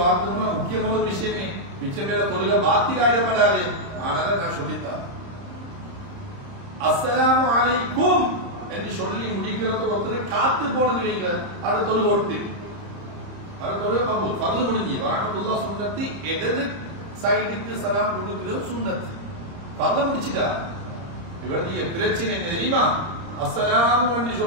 முக்கியமான ஒரு விஷயமே, மிச்சம் பேர தொழுகை பாத்திராயிடப்படாது. ஆனால நான் சொல்லித்தான் அஸ்ஸலாமு அலைக்கும் என்று சொல்லி முடிக்கிறத ஒருத்தர் காத்து போனது வைங்க, அது தொழுகை ஒட்டு ஃபர்து முடிஞ்சு, வரஹ்மத்துல்லாஹ் சுன்னத்து. இடது சைடுக்கு சலாம் கொடுக்கிறது சுன்னத்து. ஃபர்து முடிச்சிட்டா. இவருடைய பிரச்சனை என்ன தெரியுமா? அஸ்ஸலாமு என்று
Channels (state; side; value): late; left; 30 ms